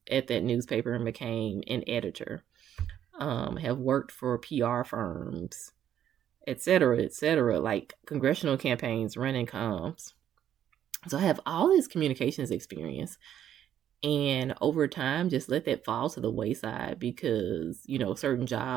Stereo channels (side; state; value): left; quieter; 10.4 dB